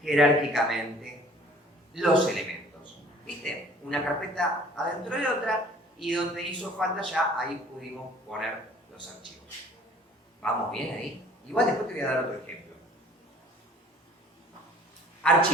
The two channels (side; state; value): both; normal; correlation 0.52